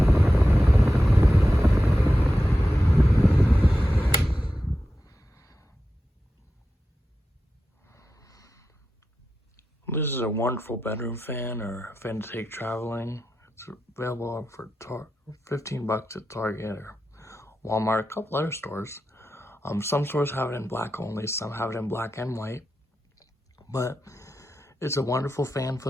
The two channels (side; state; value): both; normal; correlation 0.91